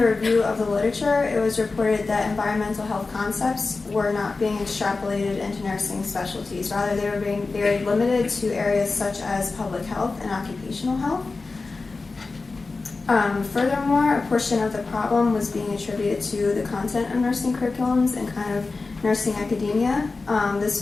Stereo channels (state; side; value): quieter; right; 3.9 dB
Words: review of the literature, it was reported that environmental health concepts were not being extrapolated into nursing specialties. Rather, they were being very limited to areas such as public health and occupational health. Furthermore, a portion of the problem was being attributed to the content of nursing curriculums and kind of nursing academia. This